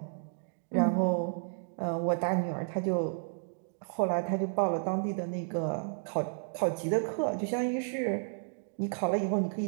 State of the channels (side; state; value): left; silent; digital silence